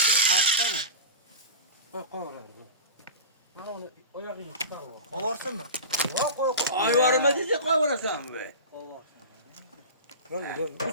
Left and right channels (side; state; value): both; inverted; correlation -0.30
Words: Kaçta mı? Koy oraya. Ben onu oyakını tutarım. Kovarsın mı? Yok koy. Ay varma diyecek koy orası be. Böyle.